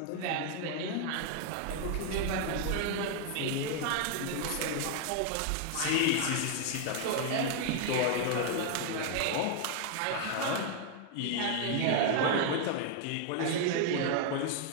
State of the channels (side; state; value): both; different; correlation 0.00